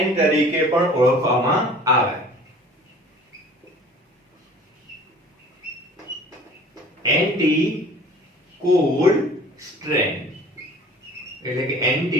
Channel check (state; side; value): normal; both; correlation 0.47